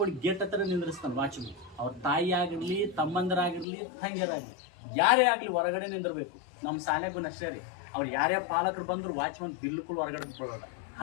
ಗೇಟ್ ಹತ್ರ ನಿಂದ್ರಿಸ್ತಾನೆ ವಾಚ್ಮನ್. ಅವ್ರ ತಾಯಿ ಆಗಿರ್ಲಿ, ತಮ್ಮಂದರಾಗಿರ್ಲಿ, ತಂಗಿಯರಾಗಿರ್ಲಿ, ಯಾರೇ ಆಗಲಿ ಹೊರಗಡೆ ನಿಂದಿರ್ಬೇಕು. ನಮ್ಮ ಶಾಲೆಗೂ ಅಷ್ಟೇ ರೀ, ಅವ್ರು ಯಾರೇ ಪಾಲಕರು ಬಂದ್ರು ವಾಚ್ಮನ್ ಬಿಲ್ಕುಲ್ ಹೊರಗಡೆ ಬಿಡೋಲ್ಲ.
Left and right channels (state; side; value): drops out; right; at 3.7 s